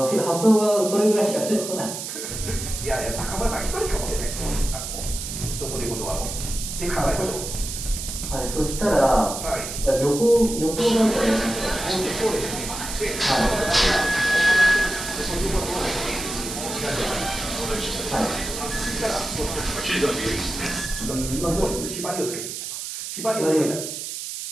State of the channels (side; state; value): right; noise; hiss, 7 dB below the sound